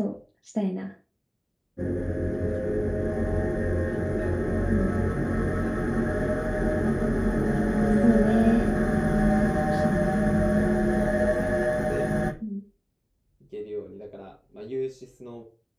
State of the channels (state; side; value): identical; both; correlation 1.00